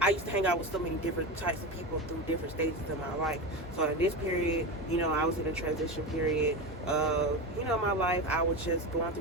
I used to hang out with so many different types of people through different stages of my life. So in this period, you know, I was in a transition period of, you know, my life. I was just going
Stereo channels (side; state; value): both; normal; correlation 0.21